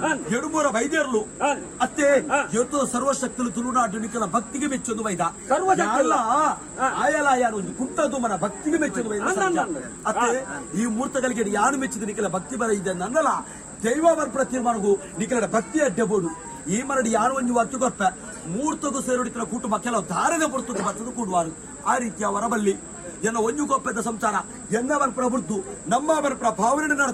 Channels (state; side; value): identical; both; correlation 1.00